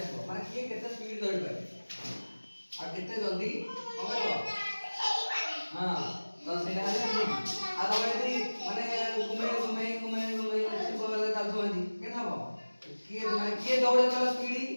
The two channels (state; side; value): inverted; both; correlation -1.00